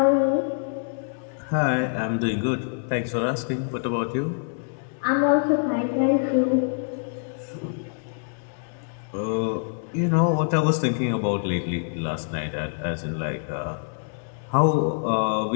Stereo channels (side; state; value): right; silent; digital silence